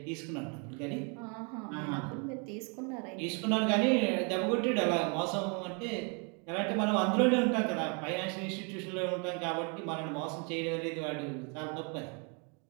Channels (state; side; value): quieter; left; 35.3 dB